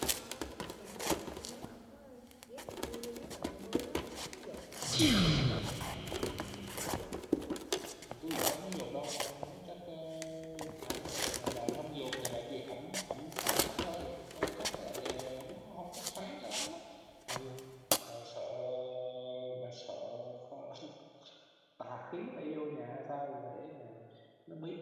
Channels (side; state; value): both; identical; correlation 1.00